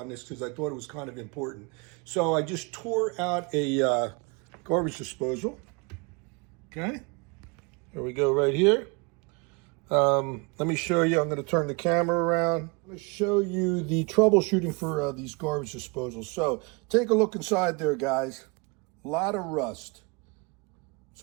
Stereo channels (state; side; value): quieter; left; 30.2 dB